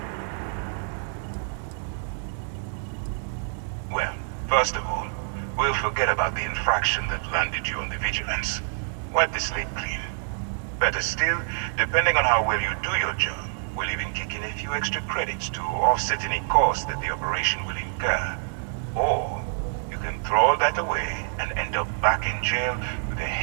First of all, we'll forget about the infraction that landed you on the Vigilance. Wipe the slate clean. Better still, depending on how well you do your job, we'll even kick in a few extra credits to offset any cost that the operation will incur. Or, you can throw all that away and end up back in jail with a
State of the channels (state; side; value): silent; left; digital silence